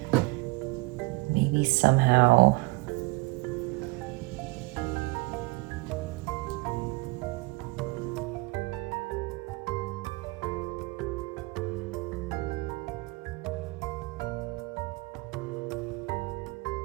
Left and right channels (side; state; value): left; quieter; 24.2 dB